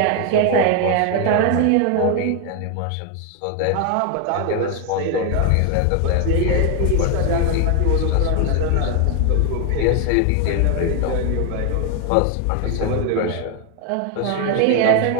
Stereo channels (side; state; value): both; different; correlation 0.01